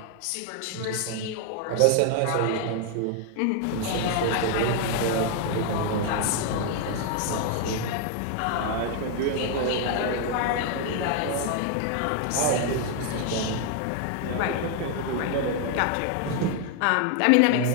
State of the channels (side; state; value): both; different; correlation 0.00